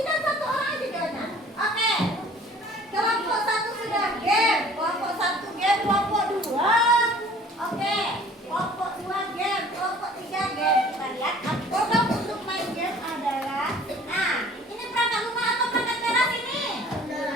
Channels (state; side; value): normal; both; correlation 0.50